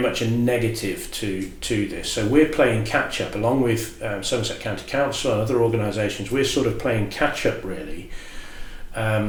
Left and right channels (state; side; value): identical; both; correlation 1.00